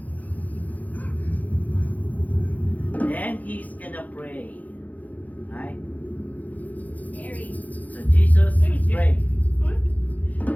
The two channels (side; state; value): right; late; 0.079 ms